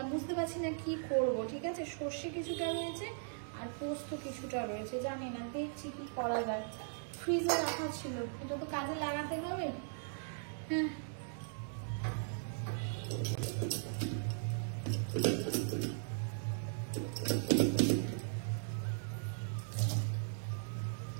বুঝতে পারছি না কি করব, ঠিক আছে? সর্ষে কিছুটা রয়েছে আর পোস্ত কিছুটা রয়েছে, জানি না, দেখছি কি করা যায়। ফ্রিজে রাখা ছিল, এটা তো কাজে লাগাতে হবে, হ্যাঁ।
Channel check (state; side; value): silent; left; digital silence